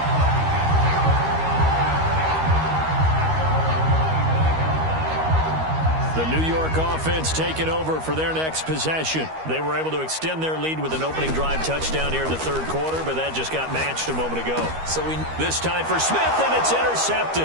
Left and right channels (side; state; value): left; late; 13 ms